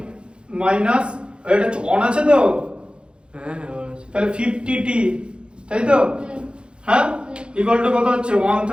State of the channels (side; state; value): left; late; 0.055 ms